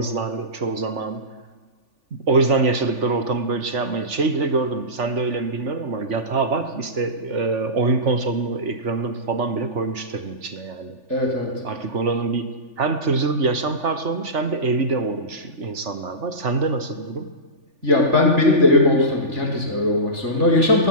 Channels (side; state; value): left; late; 3.4 ms